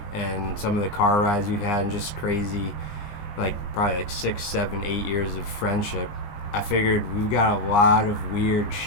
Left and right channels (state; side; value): late; right; 20 ms